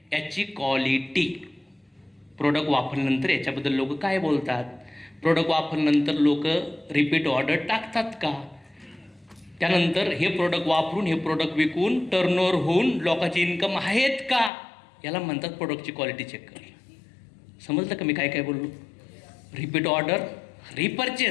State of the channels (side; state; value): right; drops out; at 14.5 s